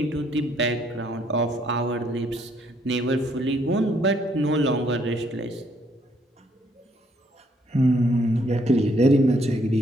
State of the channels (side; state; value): both; normal; correlation 0.69